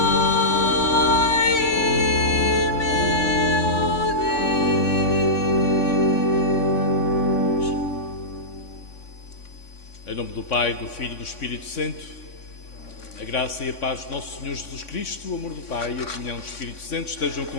e meu Deus. Em nome do Pai, do Filho e do Espírito Santo, a graça e a paz de nosso Senhor Jesus Cristo, o amor do Pai e a comunhão do Espírito Santo estejam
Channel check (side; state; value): right; late; 3.5 ms